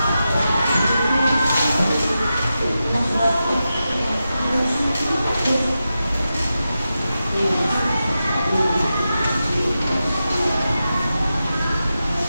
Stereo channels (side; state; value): both; inverted; correlation -0.90